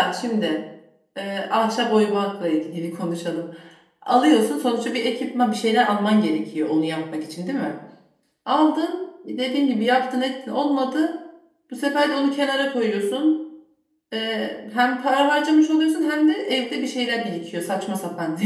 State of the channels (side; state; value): both; identical; correlation 1.00